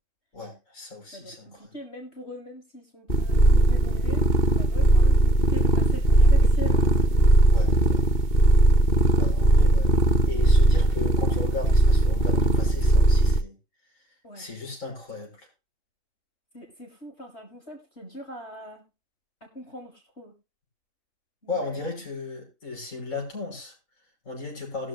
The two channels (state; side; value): late; right; 2.8 ms